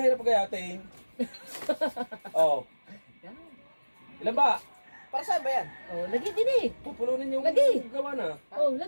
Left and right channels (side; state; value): both; inverted; correlation -1.00